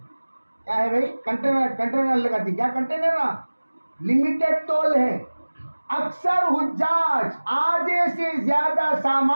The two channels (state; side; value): inverted; both; correlation -1.00